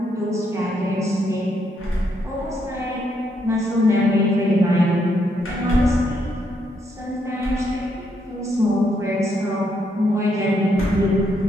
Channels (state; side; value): normal; both; correlation 0.76